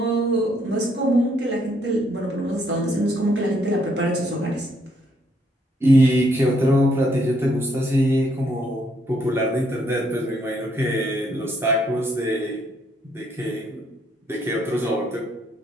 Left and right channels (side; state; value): both; normal; correlation 0.71